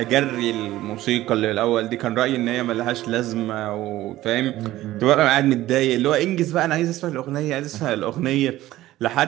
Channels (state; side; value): quieter; left; 15.5 dB